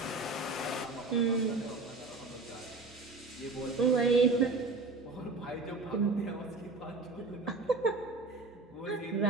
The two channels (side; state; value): left; quieter; 3.6 dB